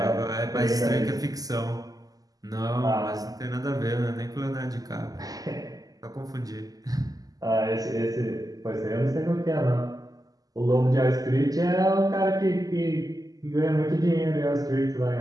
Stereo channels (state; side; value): late; left; 0.17 ms